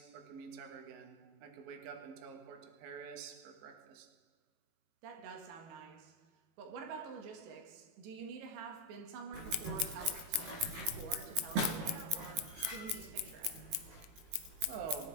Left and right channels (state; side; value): late; left; 18 ms